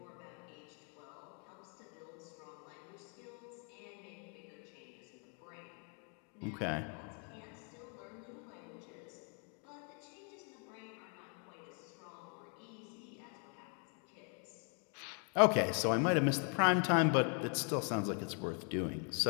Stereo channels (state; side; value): quieter; right; 40.0 dB